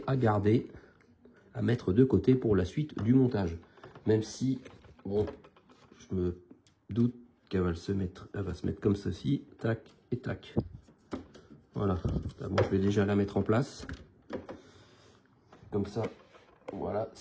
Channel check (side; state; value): both; identical; correlation 1.00